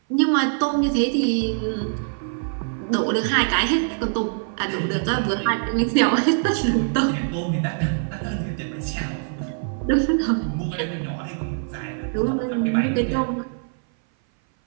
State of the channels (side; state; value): left; silent; 58 dB below the other